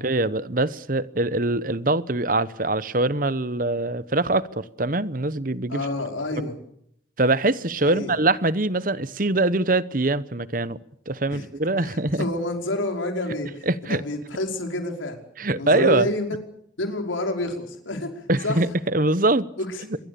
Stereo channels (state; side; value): normal; both; correlation 0.14